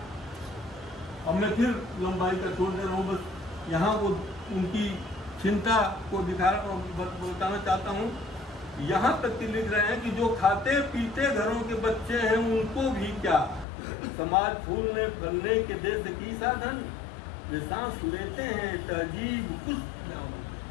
अब मैं फिर लंबाई का छोड़ दे रहा हूँ, बस यहाँ वो उनकी चिंता को बताना चाहता हूँ। यहाँ तक कि लिख रहे हैं कि जो खाते पीते घरों के बच्चे हैं उनको भी क्या, समाज फूलने फलने के देश की साधन, वे सांस लेते हैं तहजीब कुछ,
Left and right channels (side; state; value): right; drops out; at 13.7 s